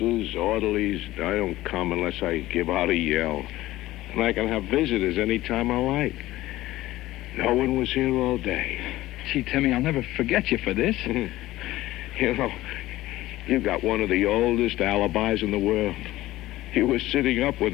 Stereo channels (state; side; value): quieter; right; 16.5 dB